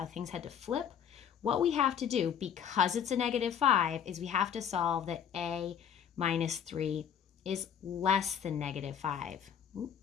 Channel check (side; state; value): right; quieter; 8.4 dB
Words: things had to flip? What we have to do, because it's a negative 5, is we have to solve that A minus 3 is less than negative 5.